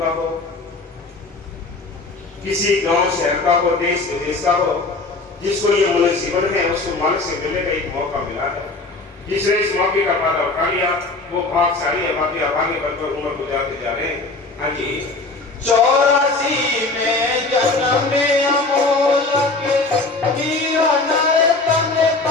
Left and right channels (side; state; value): right; quieter; 3.4 dB